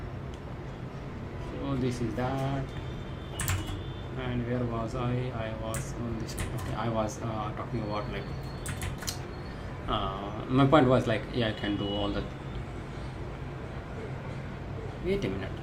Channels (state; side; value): identical; both; correlation 1.00